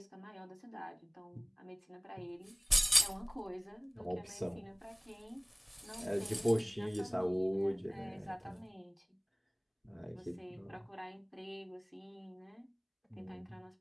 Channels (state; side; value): identical; both; correlation 1.00